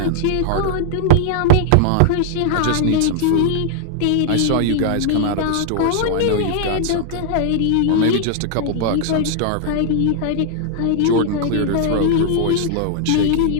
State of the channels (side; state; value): both; different; correlation 0.00